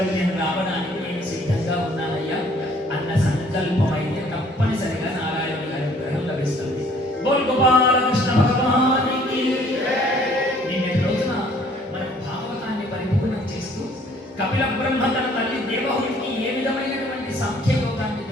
రావడానికి నేను సిద్ధంగా ఉన్నానయ్యా అన్న సంకల్పం అయితే తప్పనిసరిగా నారాయణుని అనుగ్రహం లభిస్తుంది. బోల్ గోపాల కృష్ణ భగవానికి. నిన్నటి రోజున మనం భాగవతాన్ని పరిపూర్ణం చేస్తూ కపిల బ్రహ్మ తన తల్లి దేవహుడికి ఏ విధమైనటువంటి సాంఖ్యయోగాన్ని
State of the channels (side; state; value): both; normal; correlation 0.58